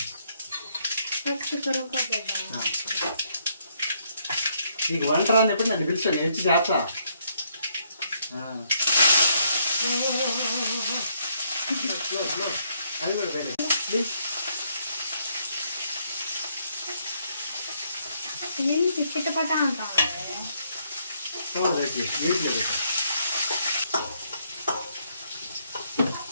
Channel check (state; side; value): inverted; both; correlation -0.72